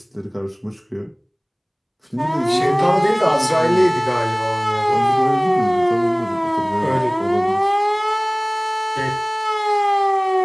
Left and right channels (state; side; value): identical; both; correlation 1.00